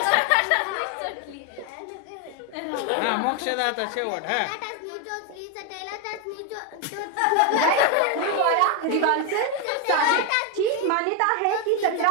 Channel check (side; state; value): both; different; correlation 0.02